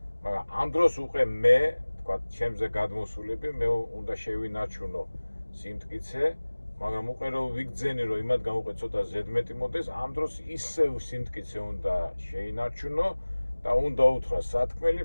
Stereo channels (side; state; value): both; inverted; correlation -1.00